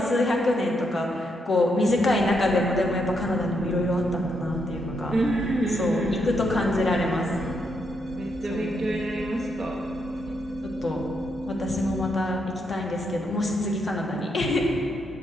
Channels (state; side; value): normal; both; correlation 0.79